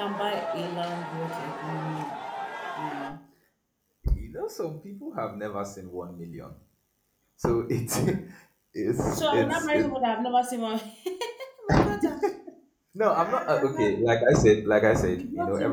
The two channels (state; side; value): identical; both; correlation 1.00